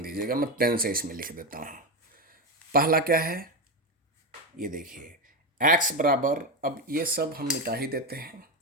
दीजिएगा, मैं पेन से इसमें लिख देता हूँ। पहला क्या है, ये देखिए, x बराबर, अब ये सब हम मिटा ही देते हैं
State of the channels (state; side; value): normal; both; correlation 0.12